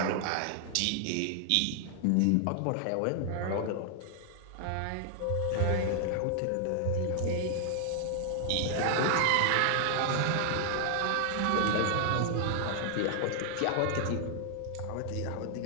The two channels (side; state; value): both; different; correlation 0.00